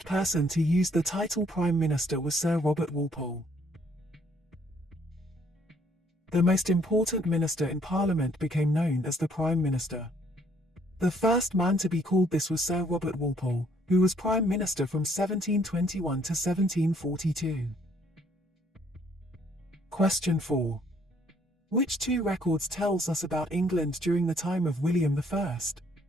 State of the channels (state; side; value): normal; both; correlation 0.65